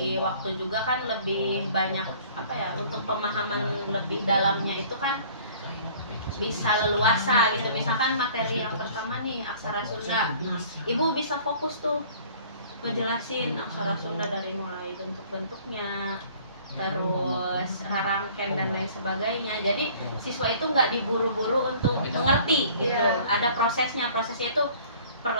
waktu juga kan lebih banyak untuk pemahaman lebih dalamnya itu kan bisa leluasa gitu. Misalkan materi yang pertama nih aksara Sunda, nah, ibu bisa fokus tuh ngejelasin aksara Sunda dari mulai bentuk-bentuknya, terus rarangken dan lain sebagainya. Jadi siswa itu nggak diburu-buru untuk mengerti gitu. Ada prosesnya itu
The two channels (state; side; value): inverted; both; correlation -0.52